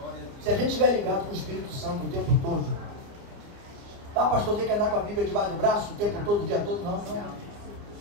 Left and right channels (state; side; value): late; left; 29 ms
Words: Se a gente estiver ligado com o Espírito Santo o tempo todo, tá, pastor, tem que andar com a Bíblia debaixo do braço o tempo todo, o dia todo? Não.